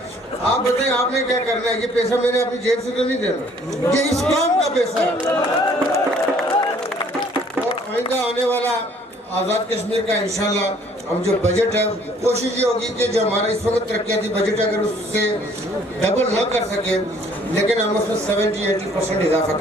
آپ بتائیں آپ نے کیا کرنا ہے. یہ پیسہ میں نے اپنی جیب سے تو نہیں دینا, یہ اس کام کا پیسہ ہے. اور آئندہ آنے والا آزاد کشمیر کا انشاءاللہ ہم جو بجٹ ہے, کوشش یہ ہوگی کہ جو ہمارا اس وقت ترقیاتی بجٹ ہے اگر اس سے ڈبل نہ کر سکے, لیکن ہم اس میں 70-80% اضافہ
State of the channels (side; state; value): both; normal; correlation 0.59